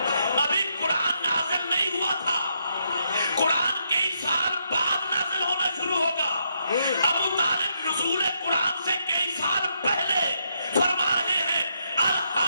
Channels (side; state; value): both; inverted; correlation -0.78